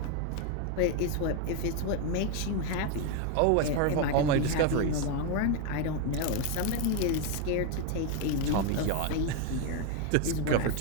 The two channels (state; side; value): different; both; correlation 0.01